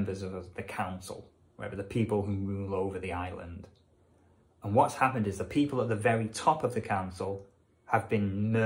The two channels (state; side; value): identical; both; correlation 1.00